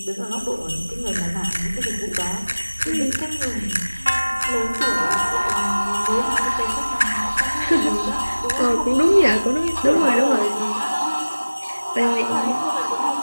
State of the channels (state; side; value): inverted; both; correlation -1.00